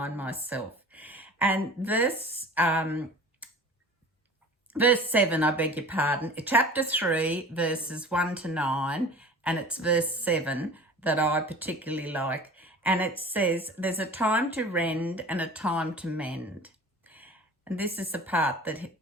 myself. And verse 7, I beg your pardon, chapter 3, verses 1 to 9, and it's verse 7 that I particularly like. And it says, there's a time to rend and a time to mend. And this is the part that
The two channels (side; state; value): both; normal; correlation 0.41